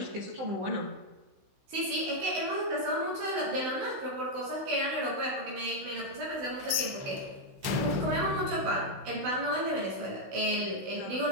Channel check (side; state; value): left; late; 16 ms